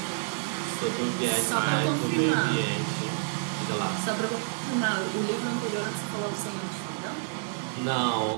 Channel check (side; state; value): left; silent; 58 dB below the other